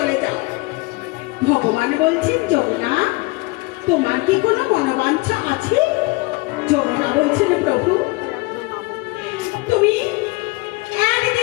যাও। ভগবান বলছেন, যমুনা তোমার কি কোনো মনোবাঞ্ছা আছে? যমুনা বলছেন, প্রভু তুমি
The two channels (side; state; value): right; quieter; 24.3 dB